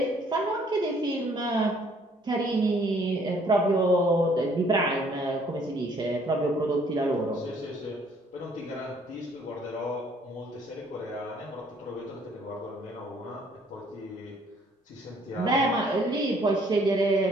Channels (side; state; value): both; normal; correlation 0.62